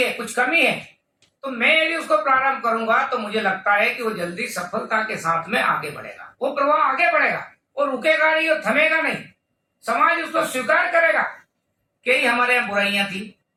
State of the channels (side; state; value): both; identical; correlation 1.00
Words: कुछ कमी है, तो मैं यदि उसको प्रारंभ करूंगा तो मुझे लगता है कि वो जल्दी सफलता के साथ में आगे बढ़ेगा, वो प्रवाह आगे बढ़ेगा, वो रुकेगा नहीं, वो थमेगा नहीं। समाज उसको स्वीकार करेगा कि हमारे यहाँ बुराइयां थी।